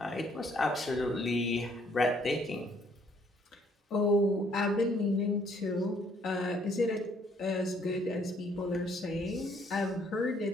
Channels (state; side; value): normal; both; correlation 0.65